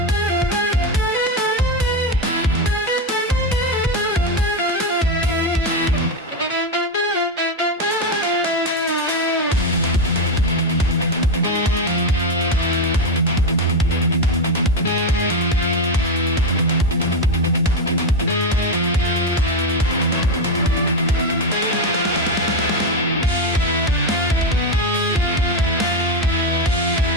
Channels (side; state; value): both; normal; correlation 0.11